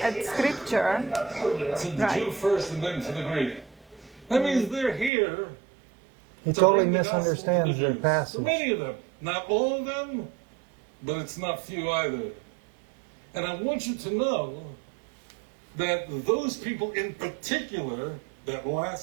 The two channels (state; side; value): drops out; left; at 5.1 s